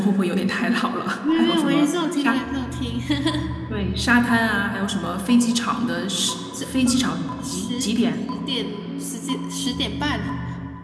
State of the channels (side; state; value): both; identical; correlation 1.00